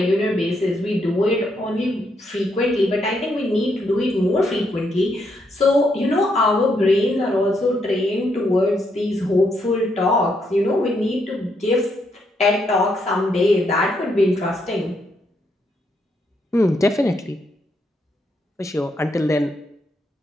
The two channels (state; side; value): normal; both; correlation 0.77